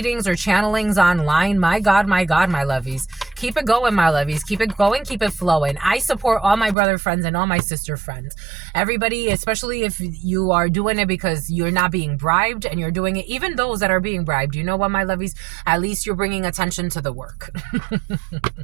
or channelings online, my God, my lovies. Keep it going, my lovies. Keep it going, keep it flowing. I support all my brother friends and all my sister friends. Everybody, especially if you are doing it because you're not being bribed and you're doing it, even those that are being bribed, you know what, my lovies? At least you're bringing attention to the work.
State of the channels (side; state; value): left; drops out; at 6.8 s